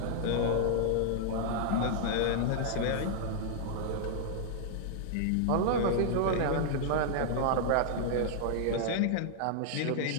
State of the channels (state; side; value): different; both; correlation -0.01